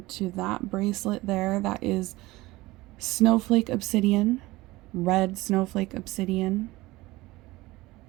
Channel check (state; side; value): quieter; left; 19.7 dB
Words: to that bracelet there. That is snowflake obsidian, red snowflake obsidian.